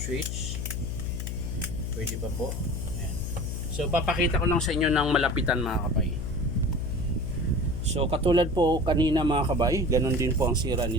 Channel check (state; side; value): noise; left; hum, 4 dB below the sound